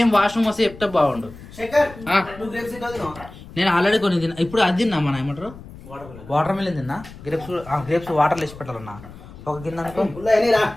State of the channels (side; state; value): left; noise; rumble, 17 dB below the sound